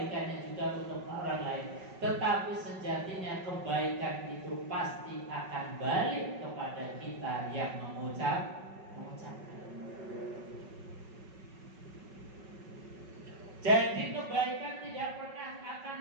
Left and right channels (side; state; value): left; late; 5.3 ms